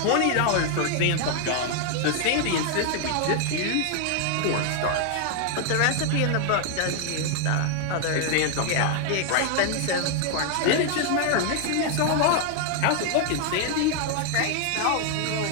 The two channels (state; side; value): different; both; correlation 0.00